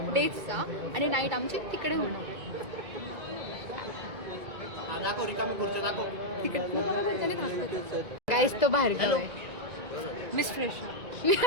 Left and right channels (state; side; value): late; left; 2.6 ms